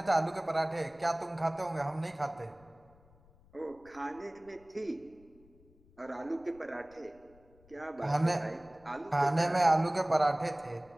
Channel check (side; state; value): left; noise; rumble, 28 dB below the sound